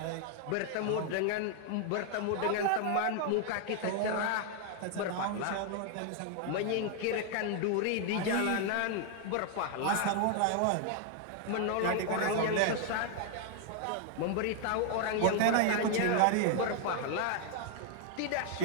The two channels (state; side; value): different; both; correlation 0.00